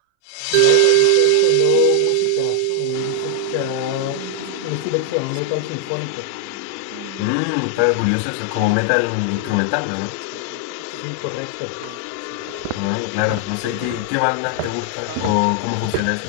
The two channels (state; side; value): different; both; correlation 0.00